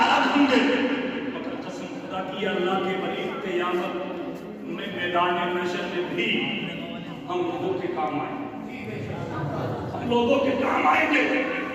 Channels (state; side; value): identical; both; correlation 1.00